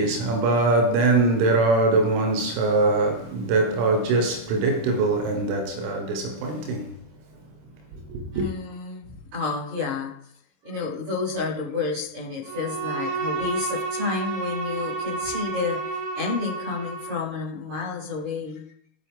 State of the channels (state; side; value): late; left; 26 ms